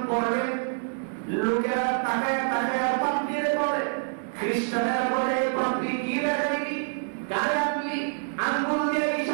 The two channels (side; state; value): left; silent; 60 dB below the other